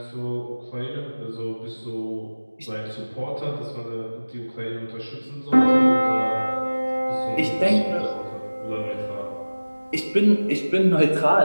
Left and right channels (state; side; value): inverted; both; correlation -1.00